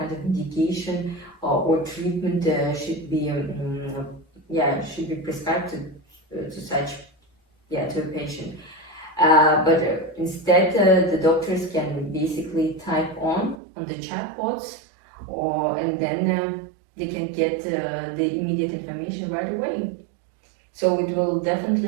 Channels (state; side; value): drops out; left; at 13.6 s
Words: of medication or treatment should be prescribed to such to a patient. But instead the doctors can basically type on the chatbots and then they can get the immediate information right away. So it will